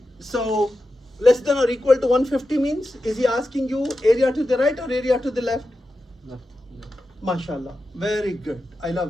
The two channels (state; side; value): normal; both; correlation 0.91